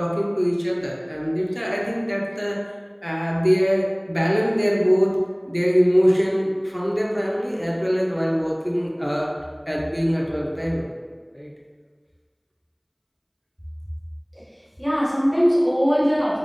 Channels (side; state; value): both; identical; correlation 1.00